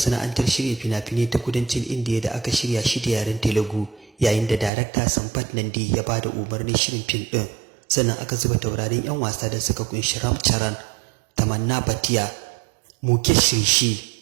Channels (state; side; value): drops out; left; at 4.7 s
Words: shirya fina-finai ta kudancin Indiya da aka shirya shi da yaren Telugu, yayin da darakta Sampath Nandi ya ba da umarnin shirin fim ɗin. Sannan aka zuba taurarin 'yan wasa da suka kunshi Ram Charan, Tamanna Bhatia, Mukesh Rishi,